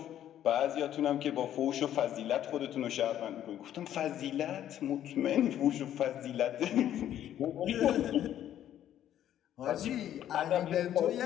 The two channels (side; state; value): right; quieter; 11.2 dB